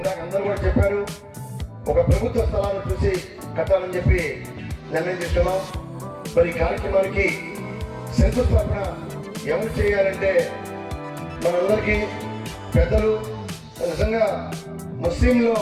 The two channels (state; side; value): identical; both; correlation 1.00